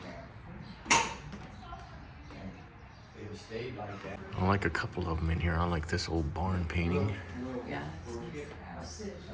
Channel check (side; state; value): both; identical; correlation 1.00